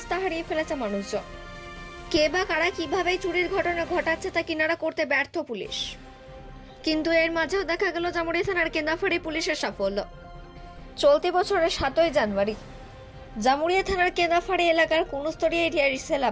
হারিয়ে ফেলেছে মানুষজন। কে বা কারা কিভাবে চুরির ঘটনা ঘটাচ্ছে তা কিনারা করতে ব্যর্থ পুলিশ। কিন্তু এর মাঝেও দেখা গেল জামুরিয়া থানার কেন্দাফাড়ি পুলিশের সাফল্য। চলতি বছরের 7ই জানুয়ারি জামুরিয়া থানার কেন্দাফাড়ি এলাকার কুনুস্তরি এরিয়ার সেল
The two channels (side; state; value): both; identical; correlation 1.00